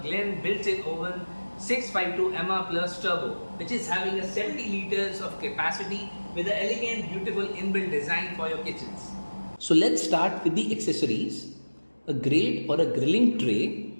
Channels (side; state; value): both; inverted; correlation -1.00